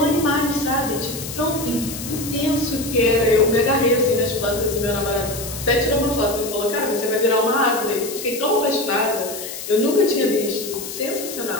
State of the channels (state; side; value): noise; left; hiss, 9 dB below the sound